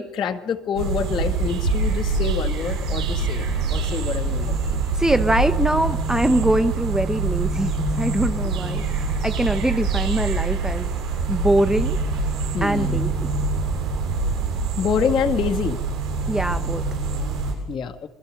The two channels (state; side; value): normal; both; correlation 0.52